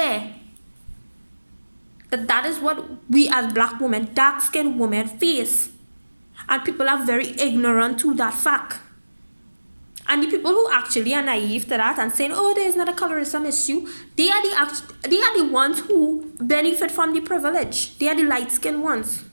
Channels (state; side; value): inverted; both; correlation -1.00